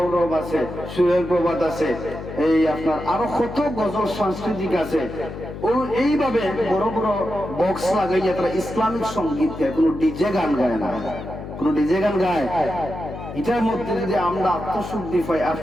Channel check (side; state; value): left; noise; hum, 10 dB below the sound